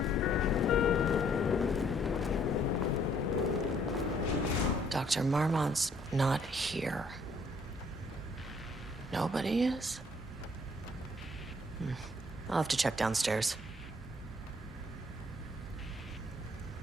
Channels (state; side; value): normal; both; correlation 0.64